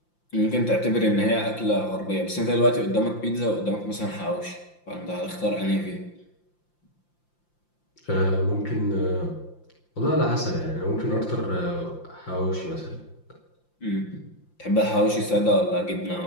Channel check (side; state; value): right; late; 5.8 ms